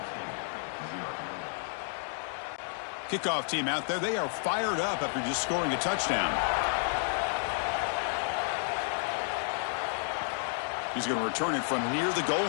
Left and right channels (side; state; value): right; silent; digital silence